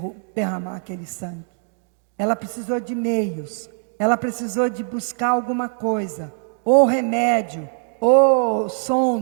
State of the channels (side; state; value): left; silent; digital silence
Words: derramar aquele sangue. Ela precisou de meios, ela precisou de buscar alguma coisa, ou remédio, ou